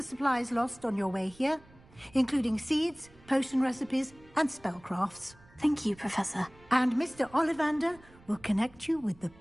supplies lost on your way here, including seeds, potion recipes, and spellcrafts. Thank you, Professor. And Mr. Ollivander will connect you with the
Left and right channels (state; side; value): noise; right; rumble, 25 dB below the sound